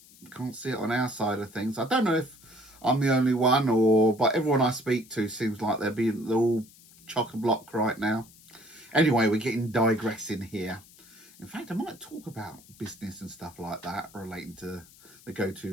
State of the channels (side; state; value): left; noise; hiss, 24 dB below the sound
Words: can't see it on our side of things. I don't know if I'm the only one, but everyone I speak to seems like they're all chock-a-block right now. Anyway, we're getting digressing here. In fact, I might talk about business and stuff like that relating to the